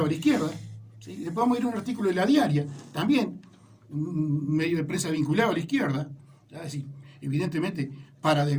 a la izquierda. ¿Sí? Después vamos a ir a un artículo de La Diaria, también un medio de prensa vinculado a la izquierda, ¿ya? Así, evidentemente para de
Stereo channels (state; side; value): identical; both; correlation 1.00